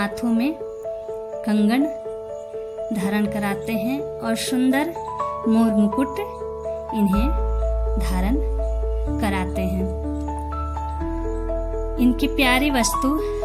में कंगन धारण कराते हैं और सुंदर मोर मुकुट इन्हें धारण कराते हैं। इनकी प्यारी वस्तु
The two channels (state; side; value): identical; both; correlation 1.00